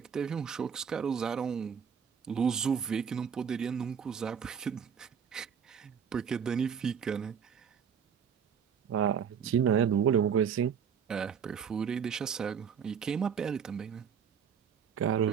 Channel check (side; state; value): left; quieter; 7.3 dB